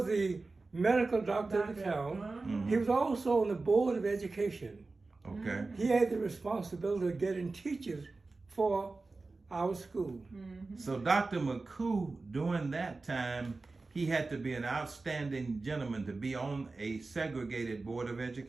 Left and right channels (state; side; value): quieter; left; 3.6 dB